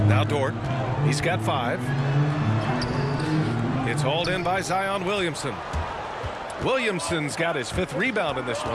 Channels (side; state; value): both; identical; correlation 1.00